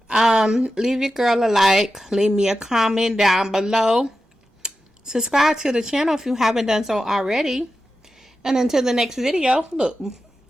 Leave your girl a like. Leave me a comment down below. Subscribe to the channel if you haven't done so already. And until the next video, look,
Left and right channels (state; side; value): normal; both; correlation 0.91